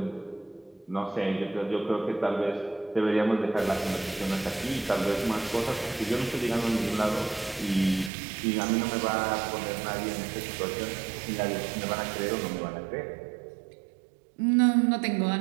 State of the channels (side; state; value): left; drops out; at 8.1 s